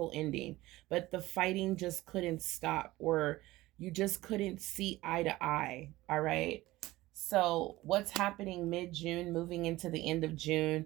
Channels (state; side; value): quieter; left; 18.1 dB